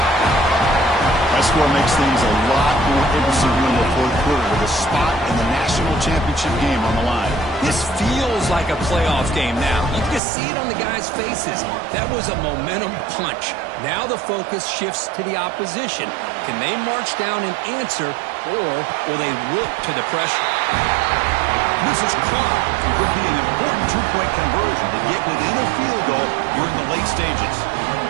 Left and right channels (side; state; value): left; drops out; at 10.2 s